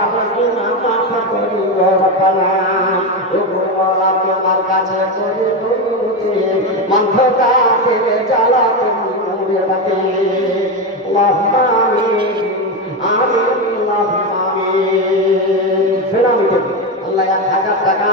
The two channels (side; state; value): both; normal; correlation 0.13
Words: গুনা মাফ করি ও রব্বানা ও গো আল্লাহ তোমার কাছে করি দুরুদ মন্থতা ফিরে জ্বালা তুমি রাতে আল্লাহুম্মা আমিন আমিন আল্লাহুম্মা আমিন ফেরামি আল্লাহ 1000 টাকা